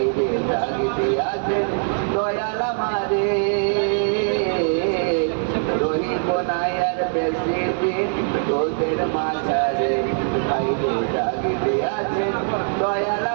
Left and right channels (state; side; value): silent; left; digital silence